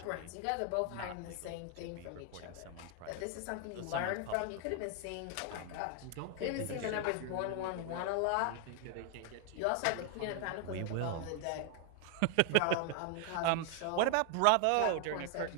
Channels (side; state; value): both; different; correlation 0.00